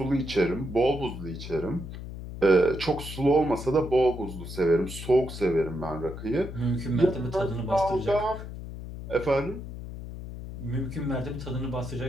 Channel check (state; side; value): noise; left; hum, 10 dB below the sound